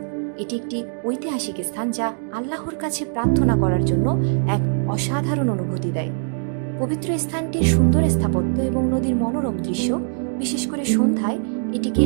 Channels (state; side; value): silent; left; 64 dB below the other